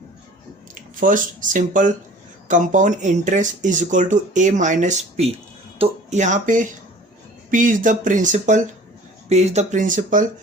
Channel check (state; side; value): normal; both; correlation 0.46